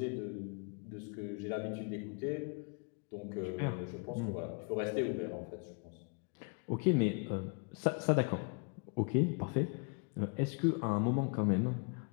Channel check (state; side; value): quieter; right; 37.5 dB